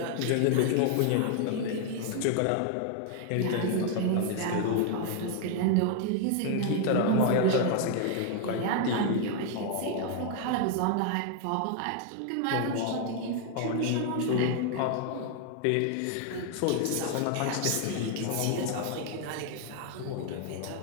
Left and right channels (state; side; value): different; both; correlation 0.00